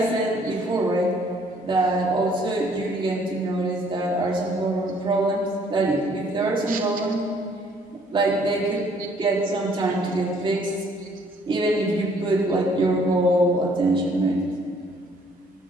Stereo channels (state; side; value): normal; both; correlation 0.62